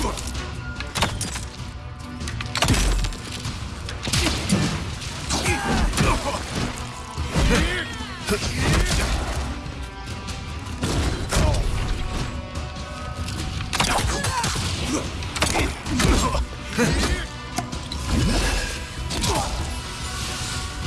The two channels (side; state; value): both; identical; correlation 1.00